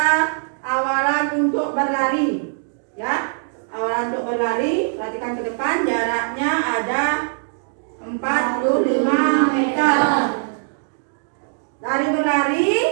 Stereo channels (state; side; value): silent; left; digital silence